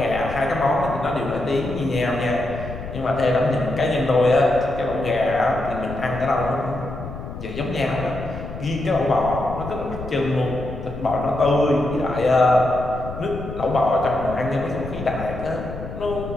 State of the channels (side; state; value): left; noise; rumble, 10 dB below the sound